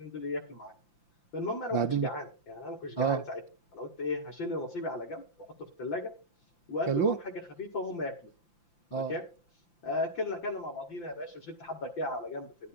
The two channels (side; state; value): right; late; 5.9 ms